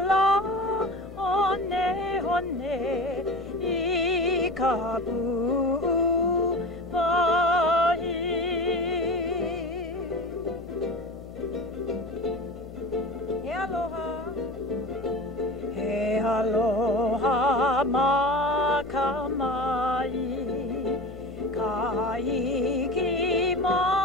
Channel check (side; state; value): left; noise; hum, 14 dB below the sound